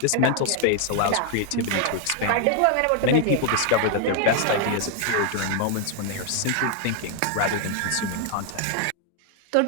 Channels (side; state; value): both; different; correlation 0.00